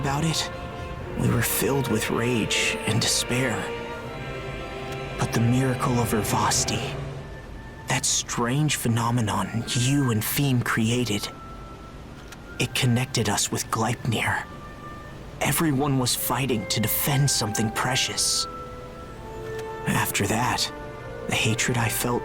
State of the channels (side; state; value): both; identical; correlation 1.00